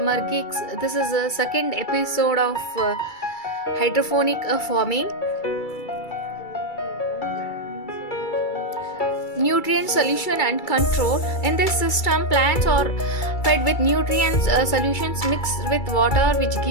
Geeks. This is the second episode of hydroponic farming. Nutrient solution and control. In this system, plants are fed with nutrient solutions mixed with water, which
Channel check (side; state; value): right; late; 2.3 ms